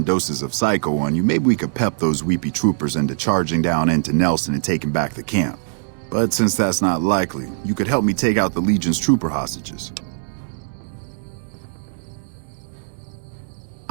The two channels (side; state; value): left; silent; 65 dB below the other